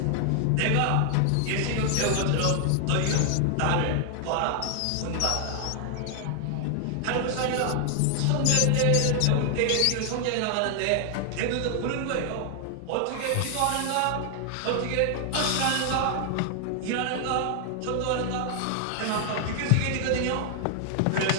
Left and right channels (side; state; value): both; different; correlation 0.00